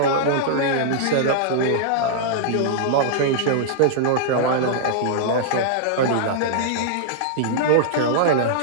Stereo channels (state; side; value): different; both; correlation -0.02